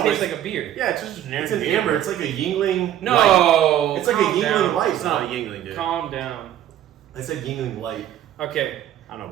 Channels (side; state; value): left; quieter; 11.5 dB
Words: tastes but like a beer. Yeah, it's just generic. It's an beer. amber. It's like a Yingling. No, Light. It's like a calm Yingling down. light. It's not a Yingling, dude. Calm down. I said Yingling light. Okay, I don't